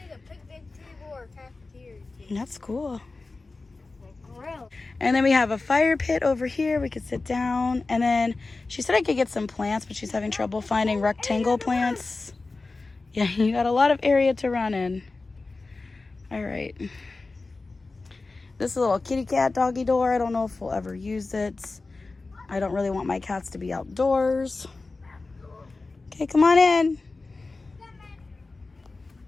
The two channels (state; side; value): quieter; right; 3.6 dB